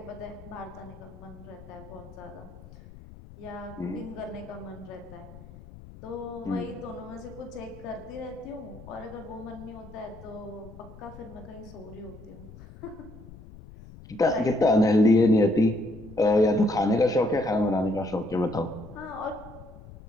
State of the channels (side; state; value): left; noise; rumble, 18 dB below the sound